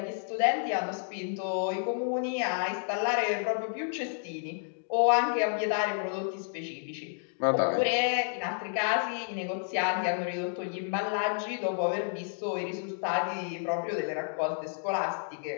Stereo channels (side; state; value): right; silent; digital silence